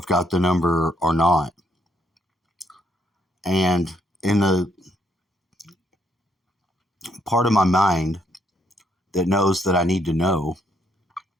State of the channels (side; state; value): both; normal; correlation 0.73